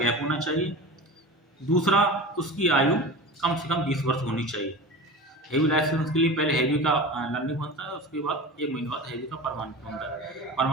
होना चाहिए। दूसरा, उसकी आयु कम से कम 20 वर्ष होनी चाहिए। हैवी लाइसेंस के लिए पहले हैवी का लर्निंग बनता है, उसके बाद 1 महीने बाद हैवी का परमानेंट बनता है।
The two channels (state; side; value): normal; both; correlation 0.32